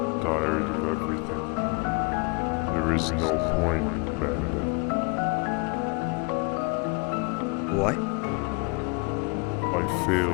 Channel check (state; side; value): quieter; right; 32.4 dB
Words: Tired of everything. There is no point, Banban. What? I